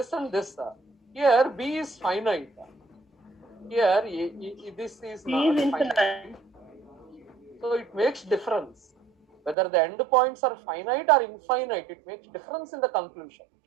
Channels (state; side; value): drops out; left; at 9.6 s